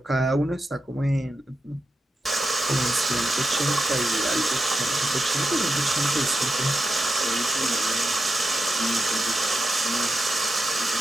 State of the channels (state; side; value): normal; both; correlation 0.88